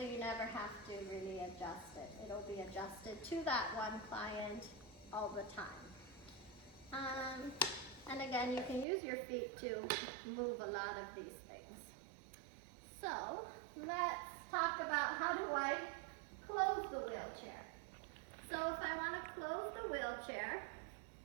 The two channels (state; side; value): drops out; left; at 8.8 s